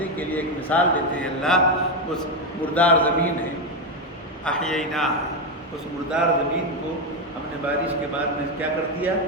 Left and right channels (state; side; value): normal; both; correlation 0.08